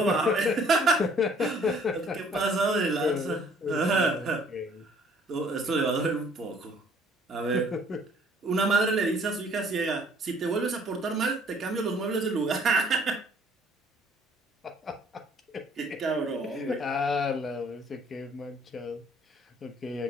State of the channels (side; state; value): both; normal; correlation 0.59